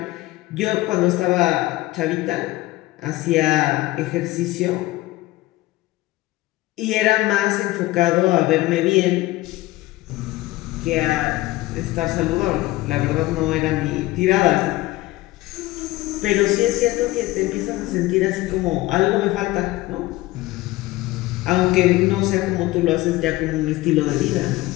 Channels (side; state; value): right; quieter; 18.3 dB